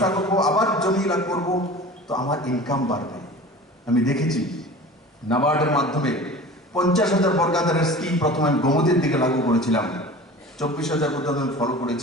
করবো, আবার জমি লাভ করবো, তো আমার ইনকাম বাড়বে। আমি দেখেছি নাবার্ডের মাধ্যমে 50,000 বর্গাদারের স্কিম প্রথমে আমি গোমতীর দিকে লাগু করেছিলাম, 24,000 পর্যন্ত আমি ফলো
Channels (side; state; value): both; normal; correlation 0.39